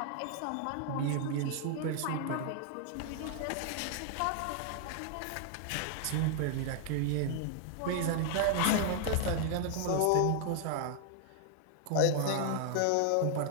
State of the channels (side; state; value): both; different; correlation 0.00